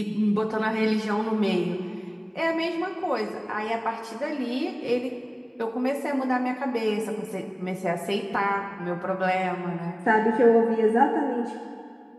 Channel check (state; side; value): identical; both; correlation 1.00